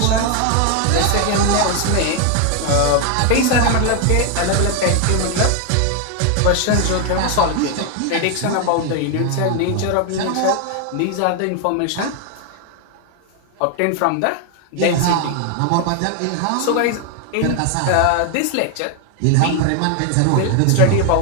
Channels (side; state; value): both; different; correlation 0.01